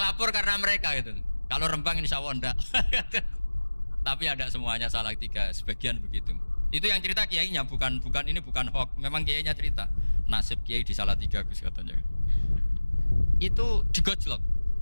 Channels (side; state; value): both; inverted; correlation -1.00